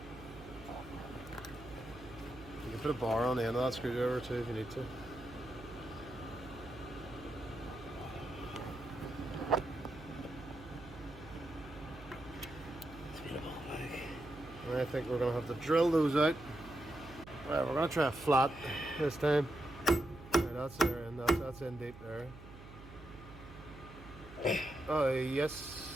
You can put a bar on the end of that screwdriver too if you need to. And I think we're going to have to drill those out. Right, we're going to try a flat this time. Right, that's there, and that's in deep there. Oh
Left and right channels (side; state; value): right; noise; hum, 16 dB below the sound